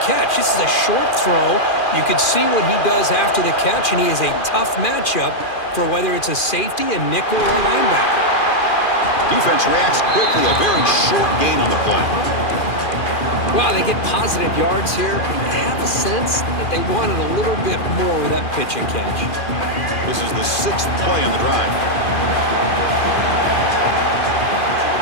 This is a short throw. You can see what he does after the catch, and he is a tough matchup for whether it's a safety, a nickel, or a linebacker. Defense reacts quickly. A very short gain on the play. Well, they get positive yards here. I have a sense that they wanted a little bit more with that pitch and catch. This is the 6th play on the drive.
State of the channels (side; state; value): right; late; 2.4 ms